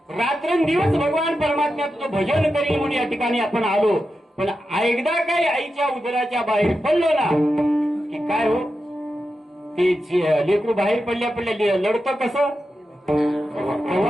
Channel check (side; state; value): both; normal; correlation 0.90